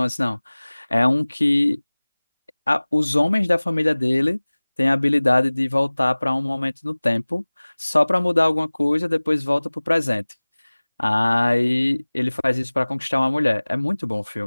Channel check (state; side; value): inverted; both; correlation -1.00